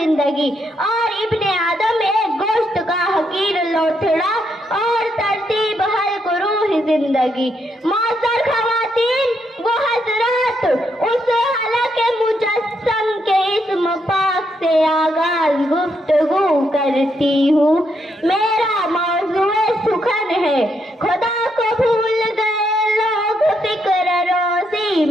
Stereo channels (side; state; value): both; normal; correlation 0.77